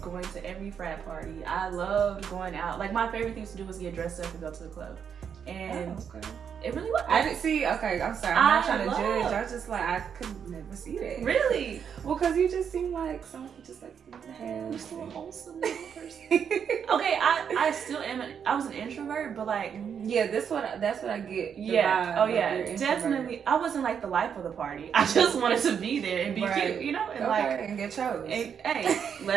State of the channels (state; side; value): quieter; left; 7.5 dB